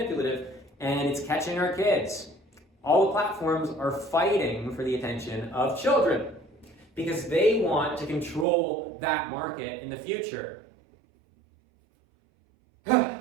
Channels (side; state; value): left; drops out; at 8.5 s